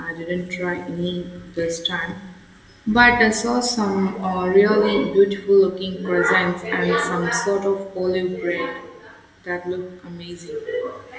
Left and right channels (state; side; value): identical; both; correlation 1.00